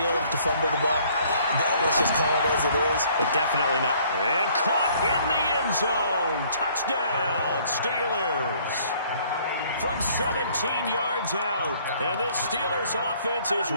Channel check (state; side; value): inverted; both; correlation -0.60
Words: to fumble the ball. Let's just call it as it is. But definitely not. And caught in the end zone. Touchdown, Steelers. From 17 yards out. And this Steelers offense is